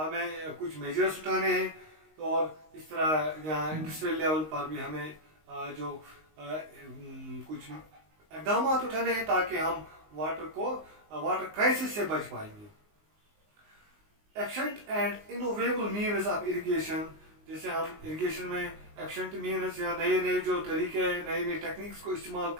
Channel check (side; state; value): left; late; 19 ms